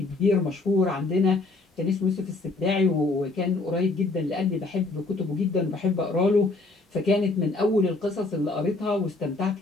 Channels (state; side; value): quieter; right; 3.4 dB